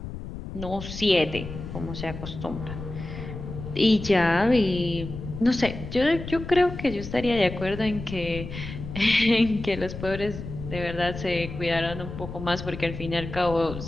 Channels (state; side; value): noise; left; rumble, 9 dB below the sound